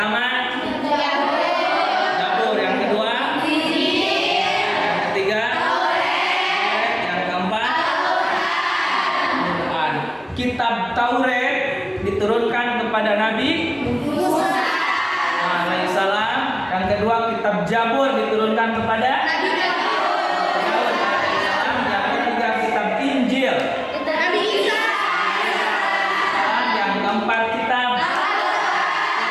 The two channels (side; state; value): both; identical; correlation 1.00